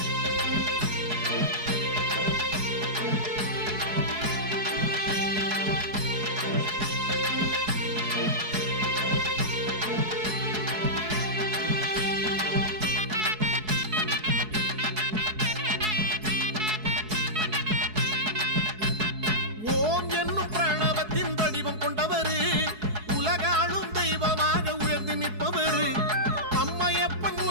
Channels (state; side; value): late; left; 4.7 ms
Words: ஓம் என்னும் பிரணவத்தின் வடிவம் கொண்டவரு, உலகாளும் தெய்வமாக உயர்ந்து நிற்பவரு. அம்மையப்பன்